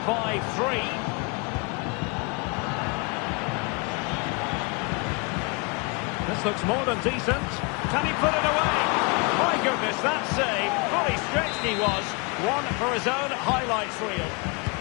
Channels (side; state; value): right; quieter; 31.8 dB